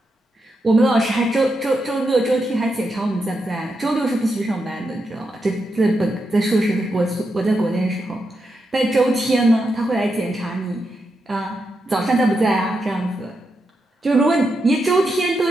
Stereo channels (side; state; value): both; normal; correlation 0.85